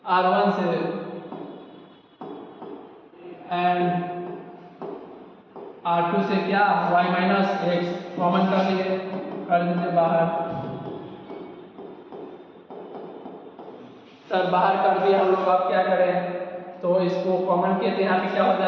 R1 से, एंड R2 से क्या, y माइनस एक्स कॉमन कर दीजिए बाहर। सर बाहर कर दिए हम लोग, अब क्या करें, तो इसको कॉमन किए तो यहाँ पे क्या हो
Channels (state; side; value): identical; both; correlation 1.00